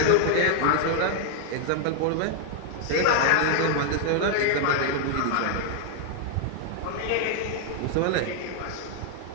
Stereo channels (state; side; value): different; both; correlation 0.00